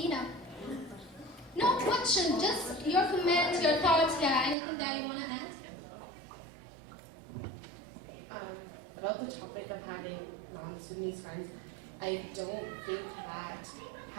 No question, just your comments, your thoughts, anything that you want to add? About the topic of having non-Sudanese friends, I don't think that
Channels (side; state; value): left; drops out; at 4.5 s